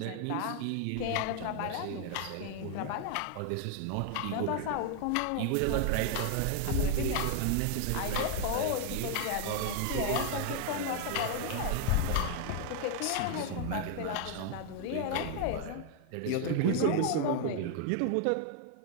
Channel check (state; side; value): different; both; correlation 0.00